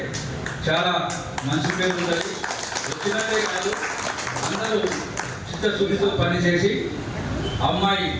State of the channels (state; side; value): identical; both; correlation 1.00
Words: చాలా మంచి పేరు ఉంటుంది. వచ్చినట్టే కాదు, అందరూ చిత్తశుద్ధితో పనిచేసి అమ్మాయి